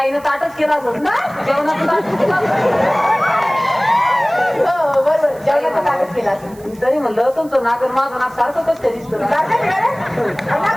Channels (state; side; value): noise; right; hiss, 25 dB below the sound